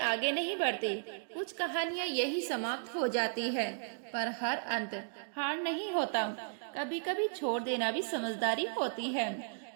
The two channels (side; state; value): left; silent; digital silence